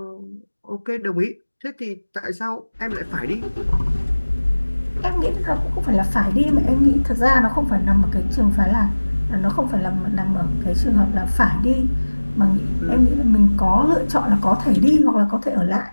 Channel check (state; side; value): inverted; both; correlation -1.00